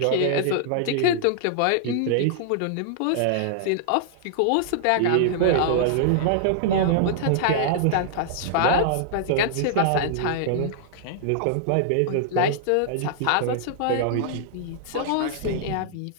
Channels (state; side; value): different; both; correlation -0.01